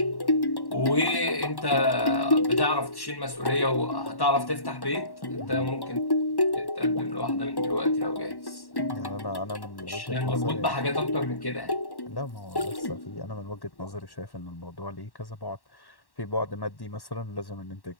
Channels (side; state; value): right; late; 1.1 ms